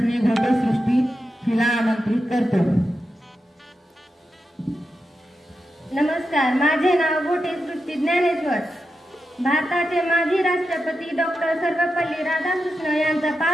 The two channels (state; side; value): normal; both; correlation 0.89